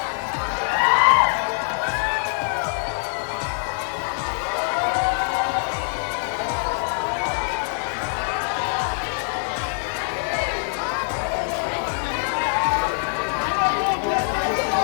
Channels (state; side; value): silent; right; 58 dB below the other